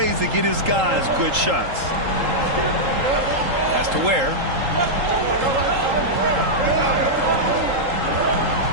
to get his guys good shots. Pass to Ware.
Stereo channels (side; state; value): left; late; 3.8 ms